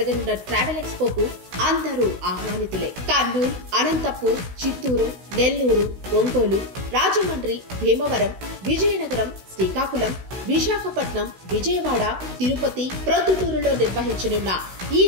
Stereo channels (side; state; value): left; late; 16 ms